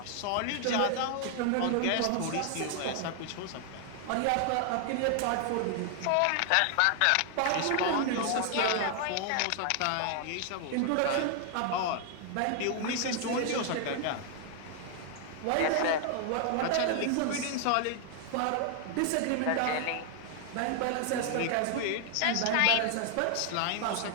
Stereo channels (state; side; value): different; both; correlation 0.00